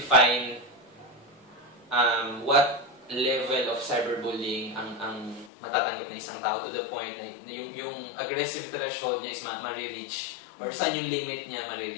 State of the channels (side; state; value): right; drops out; at 5.5 s